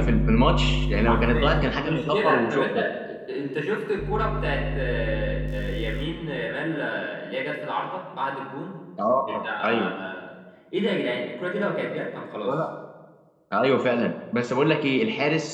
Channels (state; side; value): identical; both; correlation 1.00